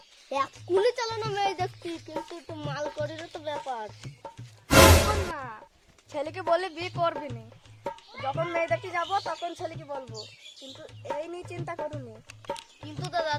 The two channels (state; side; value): identical; both; correlation 1.00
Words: এক্ষুনি চালানো মেয়ে দেখছি, কিন্তু একটু মাল করিরও তো ব্যাপার। এখন না, ছেলেকে বলে বিয়ে করবি নি, যখন মেয়ে দেখতে যাবো তখন ছেলেকে বলবো, কিন্তু এই নিয়ে চিন্তা করুনি। কিন্তু দাদা